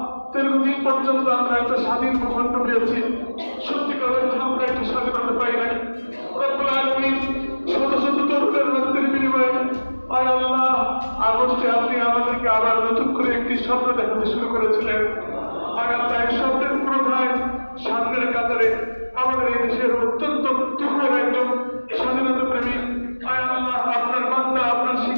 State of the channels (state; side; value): inverted; both; correlation -1.00